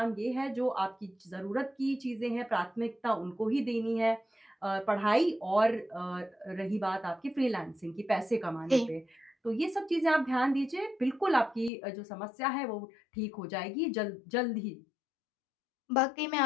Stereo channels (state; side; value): drops out; right; at 11.7 s